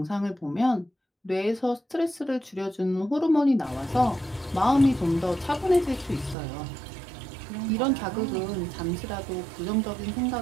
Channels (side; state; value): left; drops out; at 6.4 s